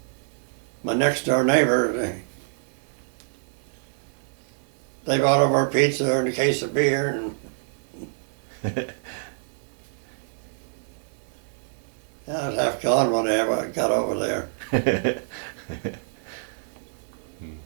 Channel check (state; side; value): silent; left; digital silence